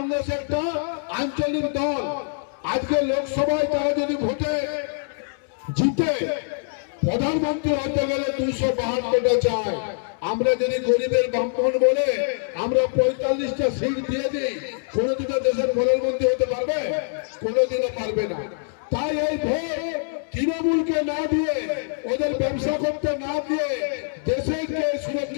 একটা আঞ্চলিক দল। আজকে লোকসভায় তারা যদি ভোটে জিতে প্রধানমন্ত্রী হতে গেলে 272টা চায়। আমরা যদি গরিবের বামপন বলে আমরা 45টা সিট দিয়ে দিই, কোনদিনও দেশের প্রধানমন্ত্রী হতে পারবে? কোনদিনও পারবে না। তাই এই ভোট তৃণমূলকে না দিয়ে, ওদের ব্যবসা করতে না দিয়ে, দেশকে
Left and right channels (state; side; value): silent; right; digital silence